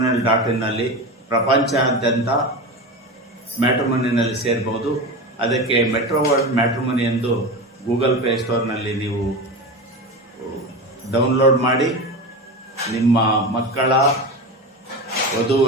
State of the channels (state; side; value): normal; both; correlation 0.24